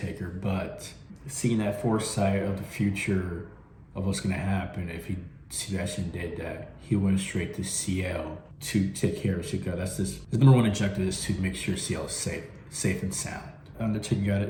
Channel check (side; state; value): both; identical; correlation 1.00